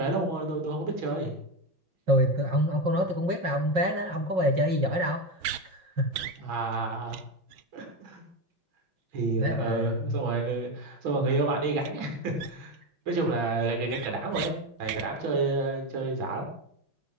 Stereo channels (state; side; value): late; left; 6.3 ms